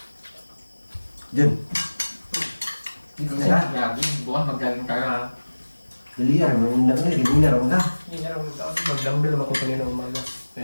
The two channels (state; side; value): inverted; both; correlation -1.00